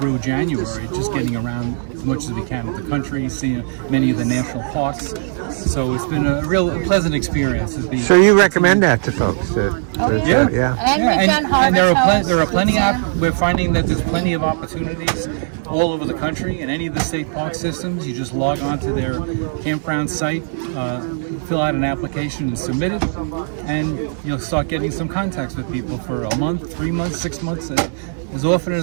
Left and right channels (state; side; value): silent; left; digital silence